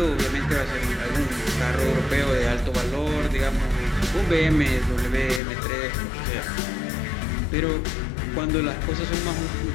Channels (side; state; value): right; drops out; at 5.4 s